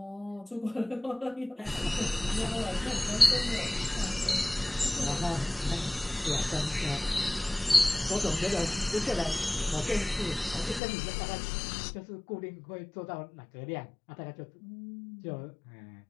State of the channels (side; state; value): right; drops out; at 10.8 s